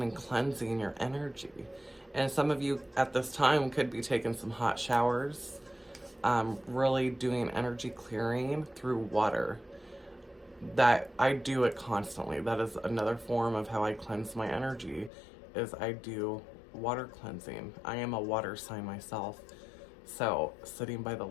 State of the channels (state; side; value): drops out; right; at 15.1 s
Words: and cleansing your energy. And some of you at this time could be taking some hot showers, really doing energy clearing through water. That I do it constantly. That is another form of how I cleanse my energy, is I do water cleansing. I am a water sign myself. So sitting by the